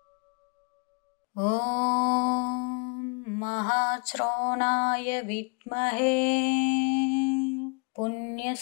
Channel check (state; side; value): quieter; right; 34.3 dB